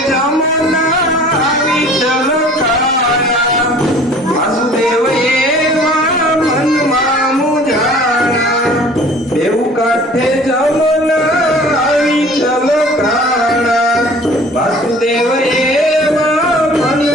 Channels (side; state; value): both; normal; correlation 0.48